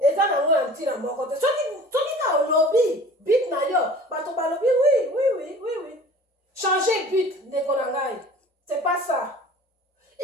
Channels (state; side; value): normal; both; correlation 0.44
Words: Et ça na un petit na mon côté. Ceux qui ont lobby bit na yom batoba lobby oui. Changer but ne konangai. C'est pas ça.